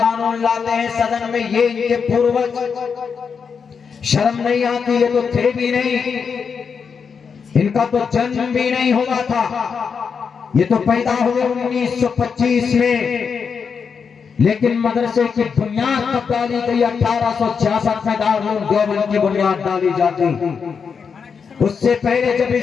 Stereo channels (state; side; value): quieter; right; 6.1 dB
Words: लाते हैं सदन में, ये इनके पूर्वज शर्म नहीं आती? ये तो थे भी नहीं, इनका तो जन्म भी नहीं हुआ था, ये तो पैदा हुए 1925 में। लेकिन मदरसे की बुनियाद कब डाली गई? 1866 में दारुल देवबंद की बुनियाद डाली जाती। उससे पहले जब